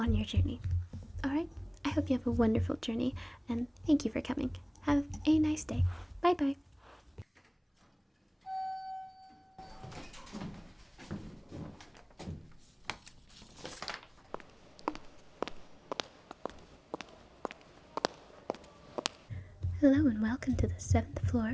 your journey. Alright, I hope you have a wonderful journey, and thank you for coming. Have a nice day. Bye bye. Hello and welcome to the 7th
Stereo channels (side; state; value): both; identical; correlation 1.00